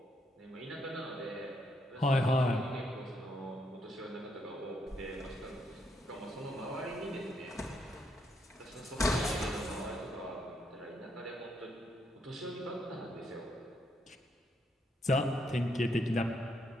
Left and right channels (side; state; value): both; normal; correlation 0.76